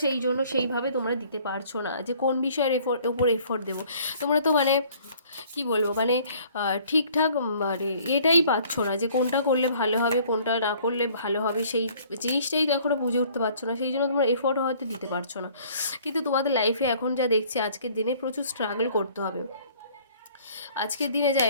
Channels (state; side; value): inverted; both; correlation -0.56